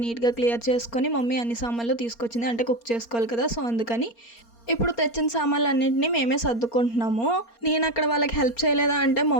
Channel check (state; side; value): late; right; 4.3 ms